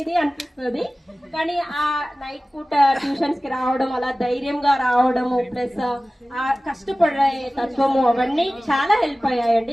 అనిపిస్తుంది. కానీ ఆ నైట్ పూట ట్యూషన్స్ కి రావడం, అలా ధైర్యంగా రావడము, ప్లస్ ఆ కష్టపడే తత్వము అవన్నీ చాలా హెల్ప్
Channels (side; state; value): both; normal; correlation 0.97